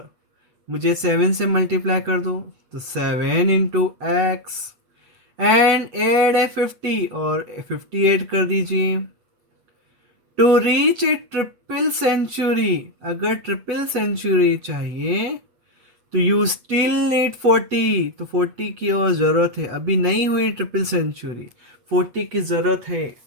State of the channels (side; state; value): left; late; 8.3 ms